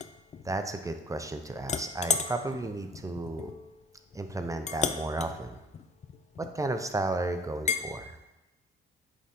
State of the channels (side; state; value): both; normal; correlation 0.47